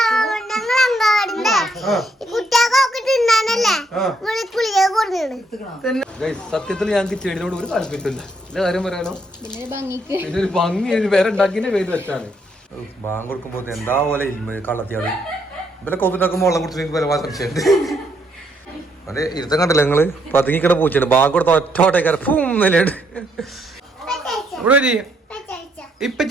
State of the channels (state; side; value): normal; both; correlation 0.73